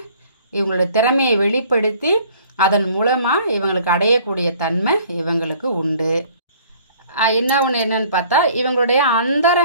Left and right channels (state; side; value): inverted; both; correlation -0.54